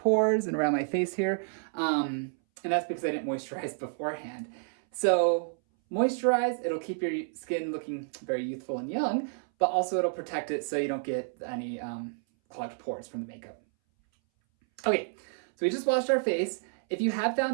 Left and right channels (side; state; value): left; silent; 58 dB below the other